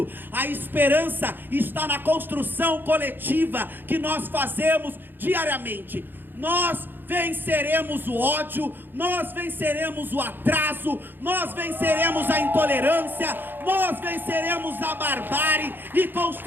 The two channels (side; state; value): left; late; 0.095 ms